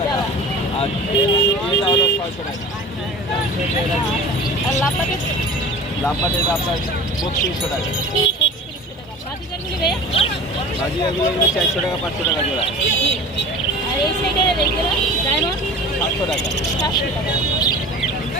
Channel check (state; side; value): normal; both; correlation 0.38